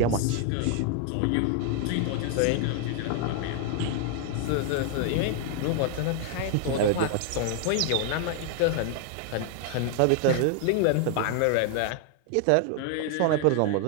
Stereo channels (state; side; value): different; both; correlation 0.00